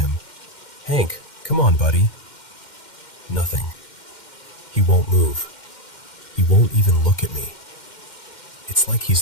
Hank, come on, buddy. Nothing. He won't move. He won't even look at me. It's like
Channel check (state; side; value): late; right; 2.1 ms